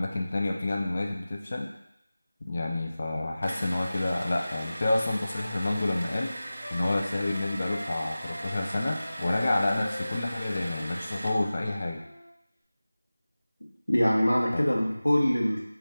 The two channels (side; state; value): both; inverted; correlation -0.97